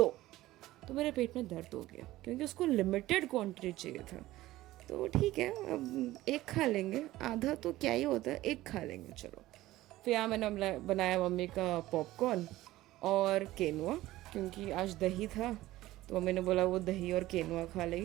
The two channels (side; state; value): left; quieter; 16.5 dB